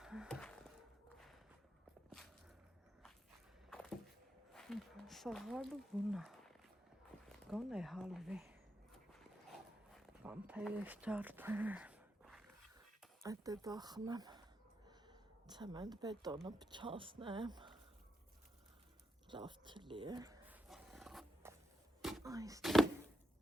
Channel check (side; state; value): both; normal; correlation 0.84